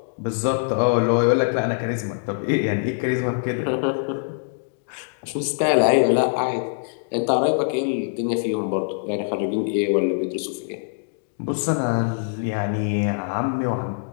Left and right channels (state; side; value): silent; right; digital silence